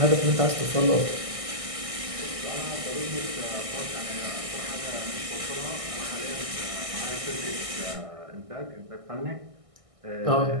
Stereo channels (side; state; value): left; late; 1.6 ms